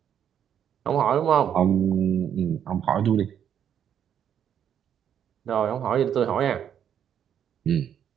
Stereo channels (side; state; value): left; quieter; 9.1 dB